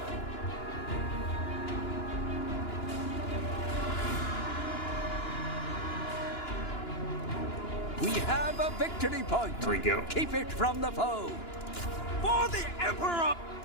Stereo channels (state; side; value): late; right; 2.9 ms